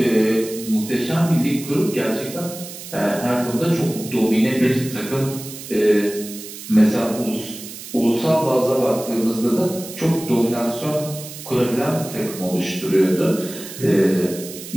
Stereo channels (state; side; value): noise; right; hiss, 12 dB below the sound